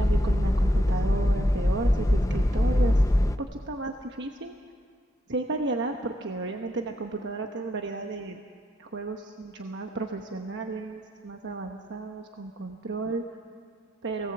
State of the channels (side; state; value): both; normal; correlation 0.79